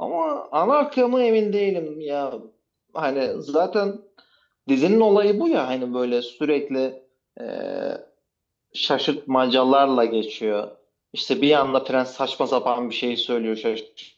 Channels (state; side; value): identical; both; correlation 1.00